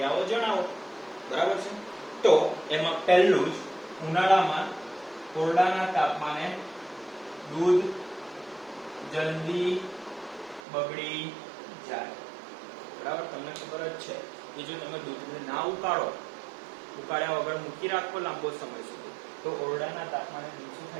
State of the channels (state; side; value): drops out; left; at 10.6 s